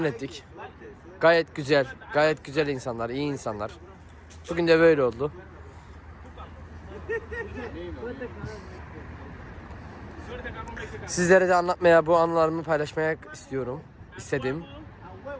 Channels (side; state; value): both; identical; correlation 1.00